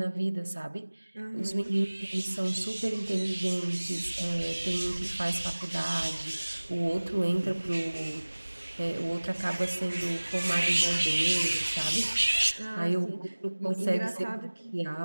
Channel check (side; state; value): both; inverted; correlation -1.00